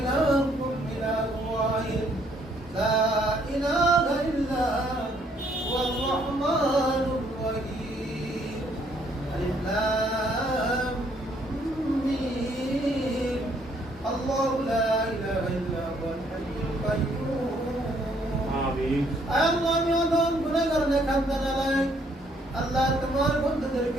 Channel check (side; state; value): both; normal; correlation 0.67